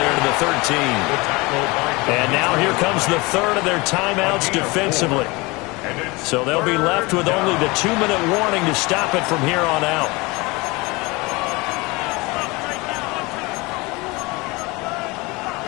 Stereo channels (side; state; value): right; quieter; 24.4 dB